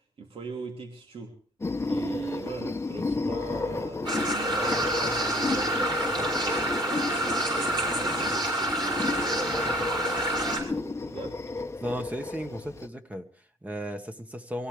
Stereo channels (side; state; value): both; normal; correlation 0.56